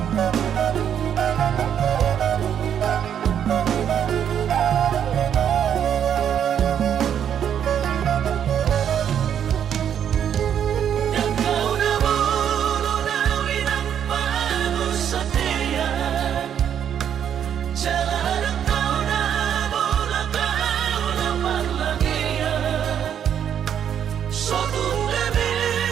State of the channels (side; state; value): left; quieter; 9.1 dB